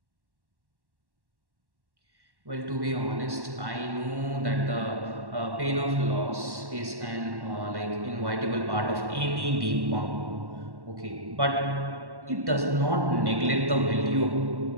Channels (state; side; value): late; left; 1.1 ms